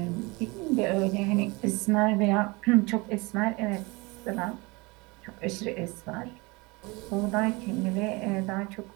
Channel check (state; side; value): quieter; left; 25.5 dB